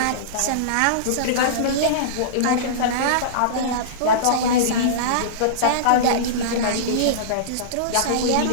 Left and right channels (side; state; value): both; different; correlation -0.04